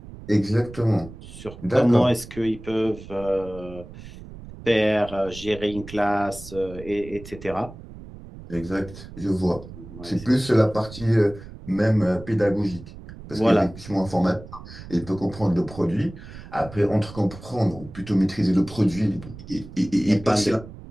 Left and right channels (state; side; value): noise; right; rumble, 15 dB below the sound